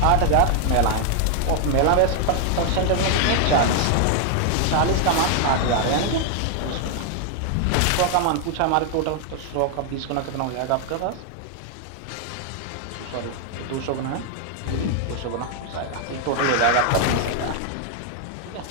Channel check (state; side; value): different; both; correlation 0.00